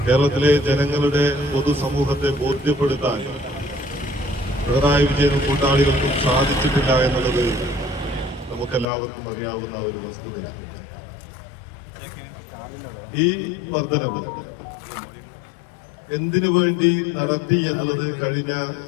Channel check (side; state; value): right; drops out; at 8.8 s